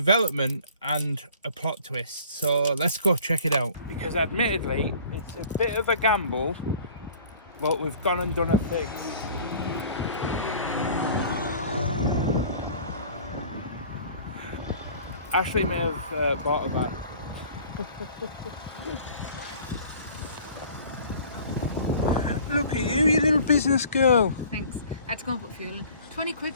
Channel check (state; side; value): inverted; both; correlation -0.48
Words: and a plot twist, so let's go check it out. Because admittedly, it's a bit of a gamble, but we've gone and done a thing. Ashley may have bought a van. Look at you little business girl. Thanks. I had to go and put fuel in. 20 quid